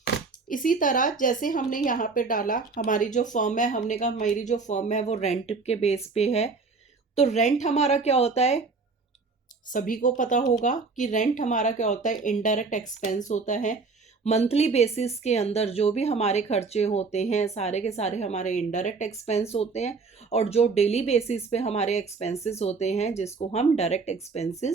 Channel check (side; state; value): left; quieter; 4.4 dB